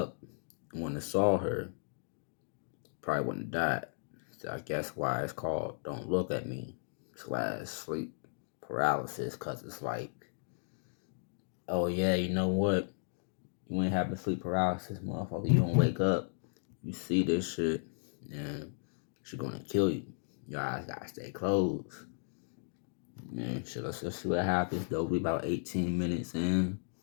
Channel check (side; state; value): right; silent; digital silence